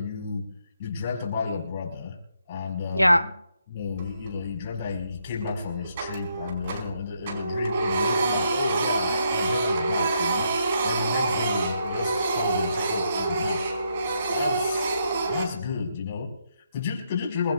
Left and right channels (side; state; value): both; inverted; correlation -0.77